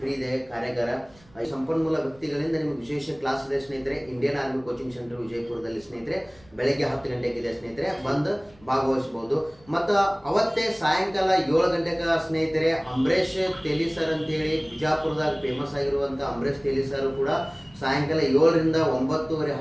ಫ್ರೀ ಇದೆ ಕಾರ್ಯಾಗಾರ. ಸಂಪನ್ಮೂಲ ವ್ಯಕ್ತಿಗಳಿಂದ ನಿಮಗೆ ವಿಶೇಷ ಕ್ಲಾಸ್ ಇದೆ ಸ್ನೇಹಿತರೆ. ಇಂಡಿಯನ್ ಆರ್ಮಿ ಕೋಚಿಂಗ್ ಸೆಂಟರ್ ವಿಜಯಪುರದಲ್ಲಿ ಸ್ನೇಹಿತರೆ. ಬೆಳಗ್ಗೆ 10 ಗಂಟೆಗಿದೆ ಸ್ನೇಹಿತರೆ, ಬಂದು ಭಾಗವಹಿಸಬಹುದು. ಮತ್ತು ಅವತ್ತೇ ಸಾಯಂಕಾಲ 7 ಗಂಟೆಗೆ ಸ್ನೇಹಿತರೆ ಅಂಬರೀಶ್ ತೇಲಿ ಸರ್ ಅಂತೇಳಿ ಬಿಜಾಪುರದಾಗ ಫೇಮಸ್ ಆಗಿರುವಂಥ ಅಂಬರೀಶ್ ತೇಲಿ ಸರ್ ಕೂಡ ಸಾಯಂಕಾಲ 7ರಿಂದ 9:30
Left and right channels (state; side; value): noise; right; rumble, 27 dB below the sound